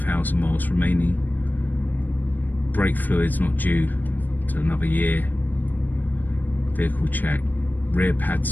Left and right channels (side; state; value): right; late; 0.088 ms